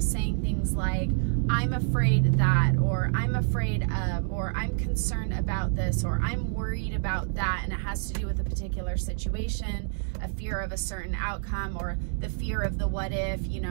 saying things like, I'm afraid that, or I'm afraid of, or I'm concerned about this, or I'm worried about that, and it has to do with a particular situation, a fear of a certain outcome, or the fear of the what if, you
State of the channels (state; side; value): silent; left; 60 dB below the other